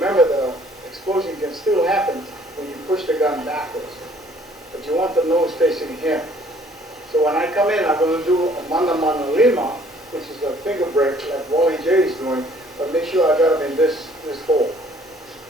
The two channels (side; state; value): both; normal; correlation 0.58